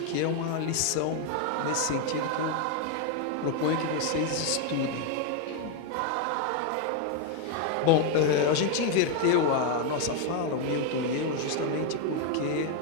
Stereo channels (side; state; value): both; different; correlation 0.01